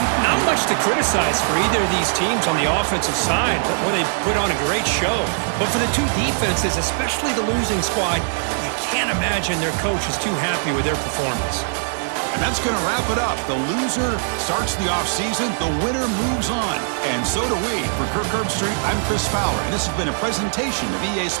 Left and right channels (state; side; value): silent; left; digital silence